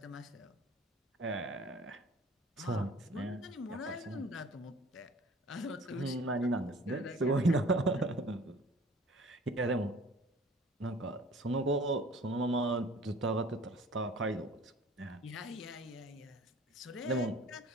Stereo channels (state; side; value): normal; both; correlation 0.49